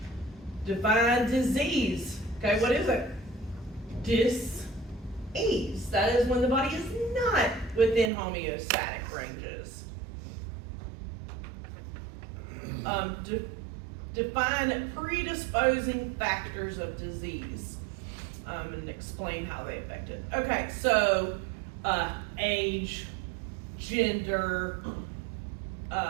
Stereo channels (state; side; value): drops out; left; at 8.1 s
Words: Define disease. Okay, what is it? Dis-ease. That is when the body is not within homeostatic ranges. Define predisposing factors of disease, and explain how they affect it. Okay, so age, gender,